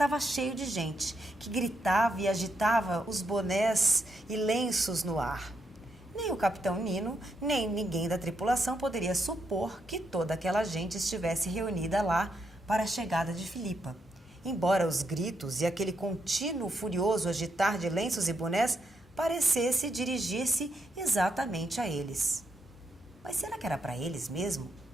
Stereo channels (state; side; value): normal; both; correlation 0.80